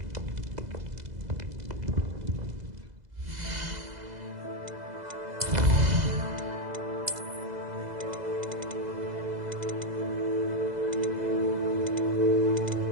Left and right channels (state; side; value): late; left; 2.0 ms